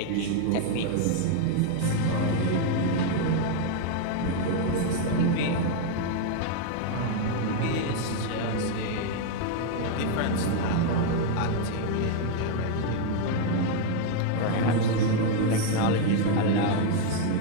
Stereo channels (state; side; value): different; both; correlation 0.00